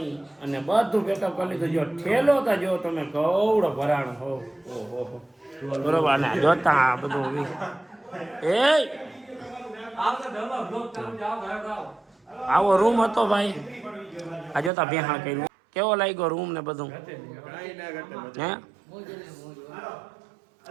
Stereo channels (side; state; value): left; drops out; at 14.7 s